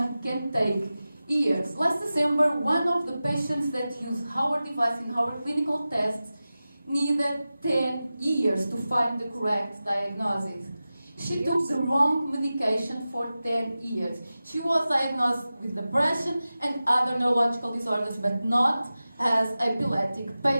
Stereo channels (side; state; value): both; inverted; correlation -0.95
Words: can take years. Last December, one of the patients that used our device in our clinical tests needed 10 years to find the correct diagnosis. She took the wrong medication for 10 years. She was diagnosed with depression and other neurological disorders, but not as an epileptic